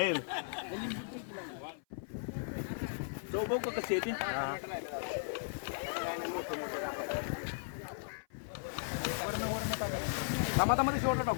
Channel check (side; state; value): right; silent; 53 dB below the other